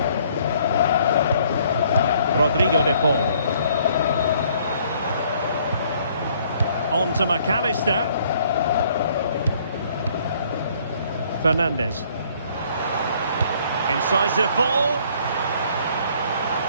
Rodrigo de Paul. On to McAllister. Fernandez. Incisive ball.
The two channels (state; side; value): inverted; both; correlation -0.62